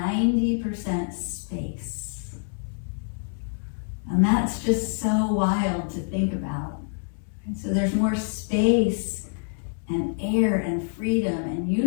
space. And that's just so wild to think about. And so there's more space and air and freedom and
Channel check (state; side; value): silent; right; 61 dB below the other